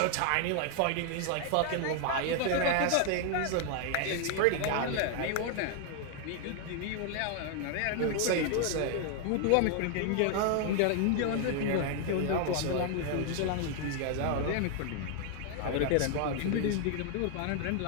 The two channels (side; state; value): both; different; correlation 0.00